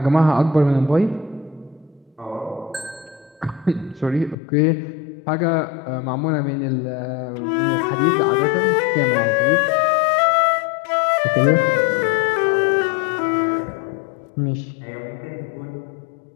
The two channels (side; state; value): right; drops out; at 4.4 s